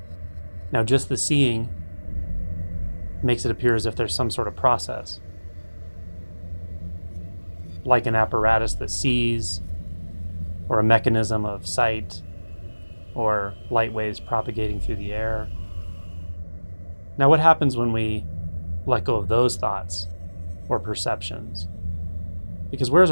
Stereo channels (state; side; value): inverted; both; correlation -1.00